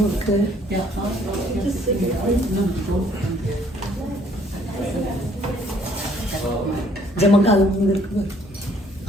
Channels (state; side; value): normal; both; correlation 0.62